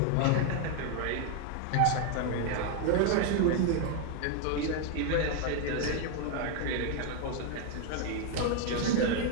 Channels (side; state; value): both; different; correlation 0.01